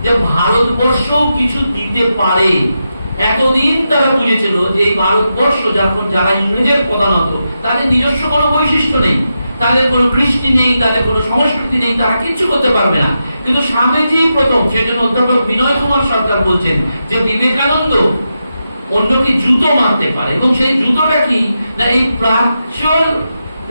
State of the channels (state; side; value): inverted; both; correlation -0.87